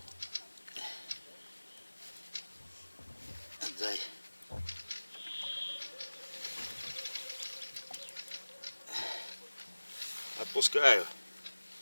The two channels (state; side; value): inverted; both; correlation -1.00